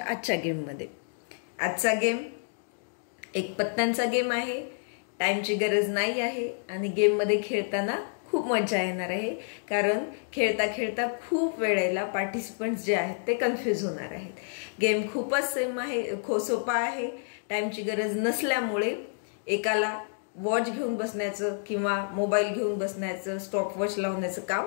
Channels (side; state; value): right; silent; digital silence